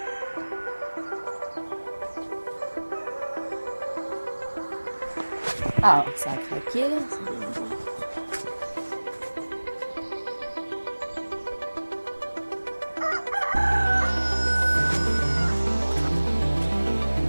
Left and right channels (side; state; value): both; inverted; correlation -1.00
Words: Ah, ça a craqué.